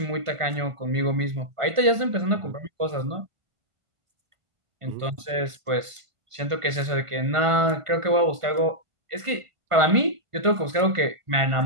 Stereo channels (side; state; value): left; late; 1.5 ms